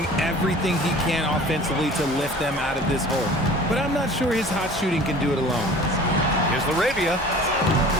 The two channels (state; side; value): normal; both; correlation 0.44